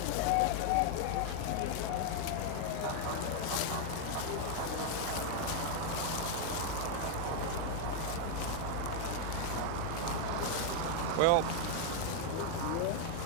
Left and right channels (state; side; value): different; both; correlation 0.00